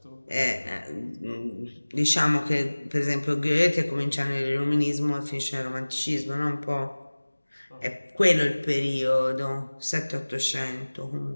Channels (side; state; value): both; inverted; correlation -1.00